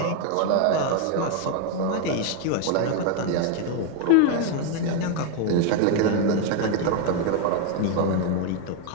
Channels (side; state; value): both; different; correlation 0.01